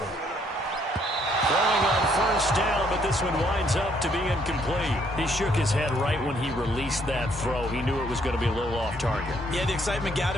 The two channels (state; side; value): normal; both; correlation 0.68